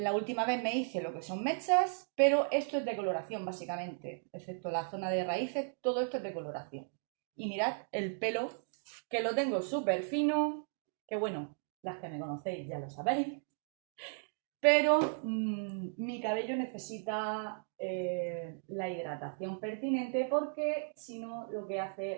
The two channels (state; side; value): silent; left; digital silence